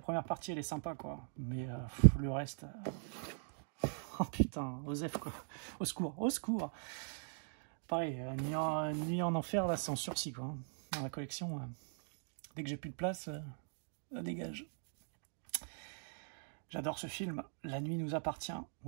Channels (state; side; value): silent; left; digital silence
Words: partie, elle est sympa, quoi. Mais le reste... Oh putain, Osef, quoi. Au secours, au secours. Pareil, Nuit en enfer, là, c'est en sursis, quoi. Dans la collection, dès que j'ai plus de place, ça dégage. J'adore ce film. La nuit nous appartient.